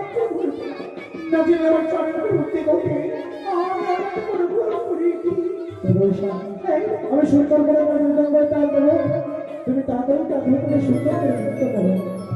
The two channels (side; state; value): both; identical; correlation 1.00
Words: আমি সুন্দর করে তুমি তাড়াতাড়ি তাকে সুন্দর করে নৃত্য করো।